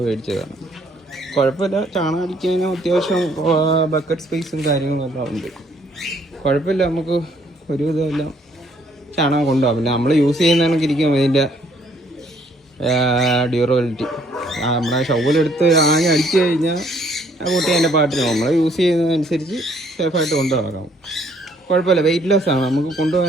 മേടിച്ചതാണ്. കുഴപ്പമില്ല, ചാണകം അടിക്കാനും അത്യാവശ്യം ബക്കറ്റ് സ്പേസും കാര്യങ്ങളും എല്ലാം ഉണ്ട്. കുഴപ്പമില്ല, നമുക്ക് ഒരു ഇതെല്ലാം ചാണകം കൊണ്ടുപോകാം. പിന്നെ നമ്മൾ യൂസ് ചെയ്യുന്നതൊക്കെ ഇരിക്കും ഇതിൻ്റെ ഡ്യൂറബിലിറ്റി. നമ്മുടെ ഷവലെടുത്ത് ആകെ അടിച്ചു കഴിഞ്ഞാൽ ആ കുട്ടി അതിൻ്റെ പാട്ടിന് നമ്മൾ യൂസ് ചെയ്യുന്നതനുസരിച്ച് സേഫായിട്ട് കൊണ്ടുപോകാം. കുഴപ്പമില്ല, വെയിറ്റ്ലെസ് ആണ്, നമുക്ക്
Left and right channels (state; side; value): normal; both; correlation 0.65